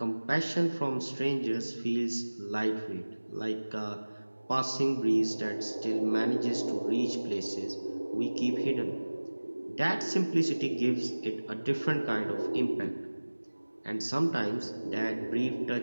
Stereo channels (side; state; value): both; inverted; correlation -1.00